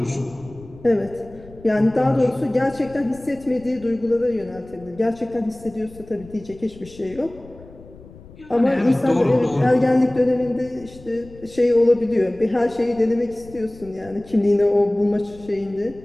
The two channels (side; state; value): left; noise; rumble, 21 dB below the sound